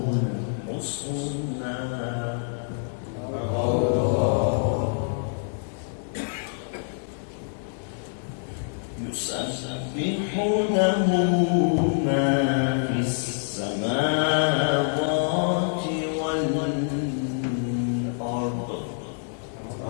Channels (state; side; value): silent; right; digital silence